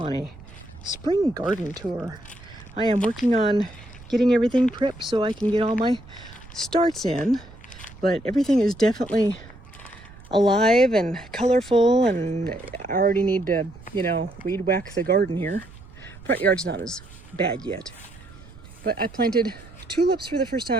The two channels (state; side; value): noise; right; rumble, 20 dB below the sound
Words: a spring garden tour. I am working on getting everything prepped so I can get all my starts in, but everything is definitely alive and colorful, and I already need to, weed whack the garden here. Front yard's not as bad yet. But I planted tulips for the first